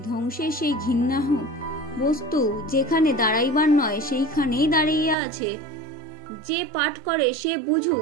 ধ্বংসের সেই ঘৃণ্য বস্তু যেখানে দাঁড়াইবার নয় সেইখানেই দাঁড়াইয়া আছে, যে পাঠ করে সে বুঝুক।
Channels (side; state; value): left; drops out; at 5.2 s